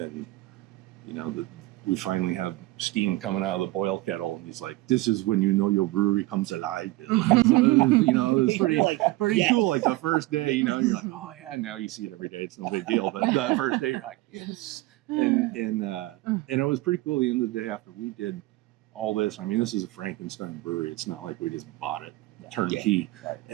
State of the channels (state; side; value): quieter; left; 19.4 dB